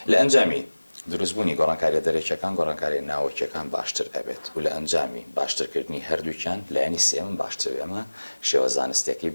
لە ئەنجامی دروستبوونی گۆڕانکاریە دەرێکیەکان گۆڕانکاری ناوەکیەکان باشتر ئەبێت و لە ئەنجامی باشترکردنی هەردووکیان لایەنی سێمم باشتر ئەمە شێوە زانستێکی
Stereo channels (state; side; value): inverted; both; correlation -1.00